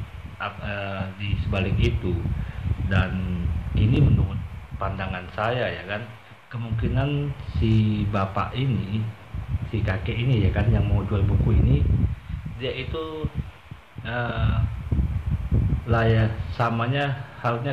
di sebalik itu. Dan ini menurut pandangan saya ya kan, kemungkinan si bapak ini, si kakek ini ya kan, yang mau jual buku ini, dia itu samanya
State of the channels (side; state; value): both; identical; correlation 1.00